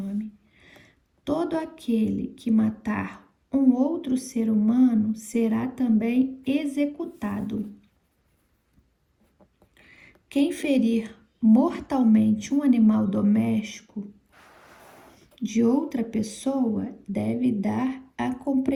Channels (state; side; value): identical; both; correlation 1.00